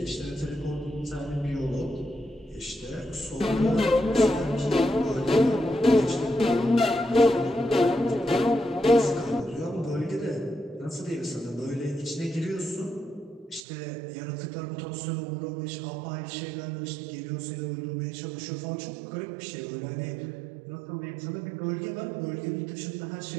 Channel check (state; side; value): drops out; left; at 13.6 s